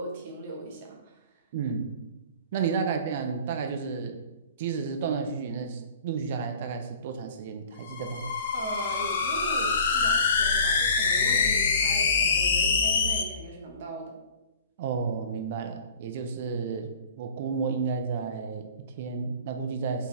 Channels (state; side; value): inverted; both; correlation -0.46